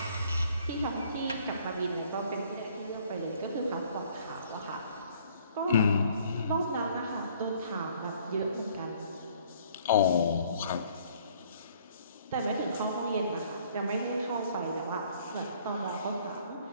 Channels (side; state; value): both; inverted; correlation -0.59